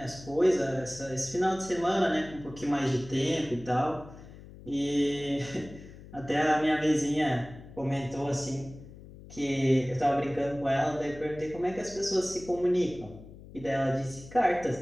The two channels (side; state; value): left; noise; hum, 17 dB below the sound